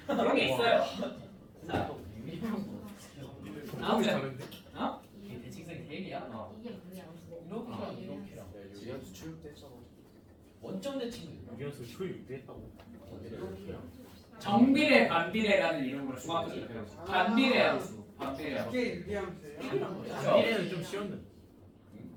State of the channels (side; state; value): both; identical; correlation 1.00